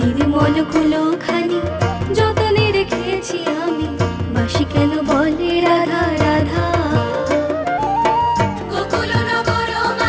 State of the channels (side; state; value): both; identical; correlation 1.00